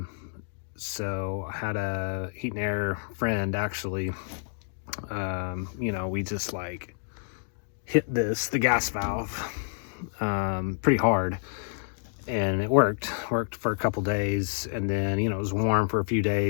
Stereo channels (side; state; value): right; silent; digital silence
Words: So I had a heat and air friend actually. We just like hit the gas valve pretty hard, and it worked for a couple days, and then it was warm for a few